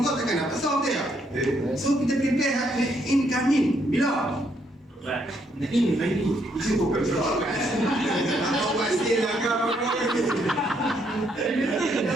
takkan dapat solve dia. So kita prepare incoming. Bila? Ini. Itu bukan soal. Apa pasti lah kau.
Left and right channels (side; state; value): both; normal; correlation 0.73